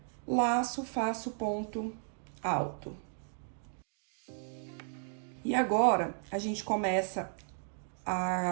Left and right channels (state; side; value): silent; left; 55 dB below the other